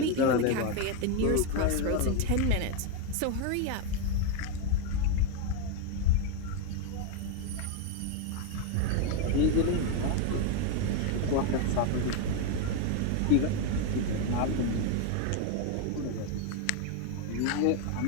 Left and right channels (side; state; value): both; different; correlation 0.02